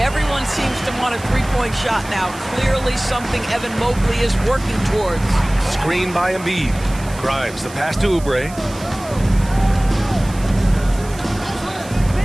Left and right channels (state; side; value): noise; right; hiss, 18 dB below the sound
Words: seems to want a three-point shot now. Clearly something Evan Mobley is working towards. Screen by Embiid. Grimes, the pass to Oubre.